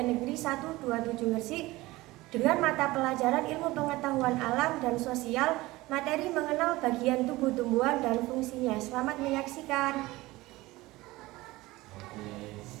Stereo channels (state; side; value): quieter; left; 19.6 dB